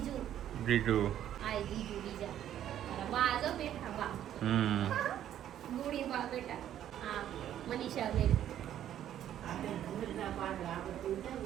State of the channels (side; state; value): left; quieter; 11.1 dB